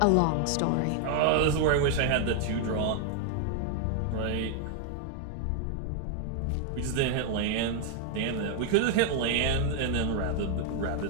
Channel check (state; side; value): different; both; correlation 0.00